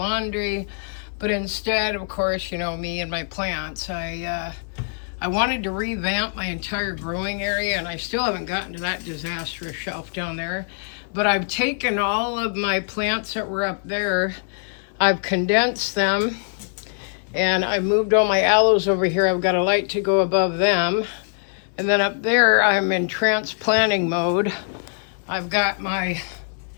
But instead, of course, you know, me and my plants, I wanted to revamp my entire growing area. And I still haven't gotten to that disastrous shelf down there. But I've taken all of my plants that were up there, I've condensed them, and I moved all my aloes over here. I've got a light to go above them. And then up there, I'm in transplanting mode. I've got my,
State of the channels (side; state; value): right; silent; 63 dB below the other